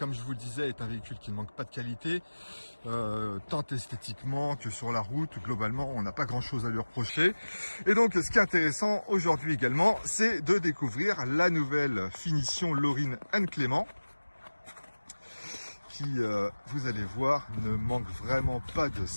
je vous le disais, est un véhicule qui ne manque pas de qualité, tant esthétiquement que sur la route. Globalement, on n'a pas grand-chose à lui reprocher. Et donc, ce qui est intéressant aujourd'hui également, c'est de découvrir la nouvelle finition Lorin Clément, qui, vous allez voir, ne manque vraiment pas de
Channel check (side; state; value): both; inverted; correlation -1.00